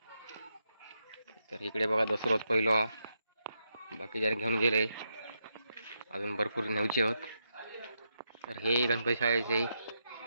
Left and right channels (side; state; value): both; inverted; correlation -0.83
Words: तर इकडे बघा दसरोज पहिलो बाकी जण घेऊन गेले, अजून भरपूर न्यायचे होत. तर हे गणपती शाळेचे